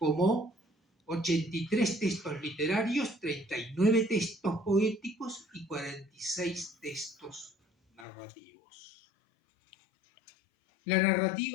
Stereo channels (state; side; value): drops out; right; at 8.1 s